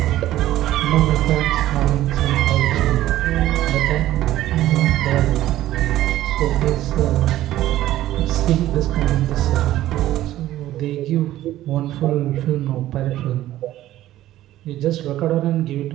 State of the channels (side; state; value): left; quieter; 14.2 dB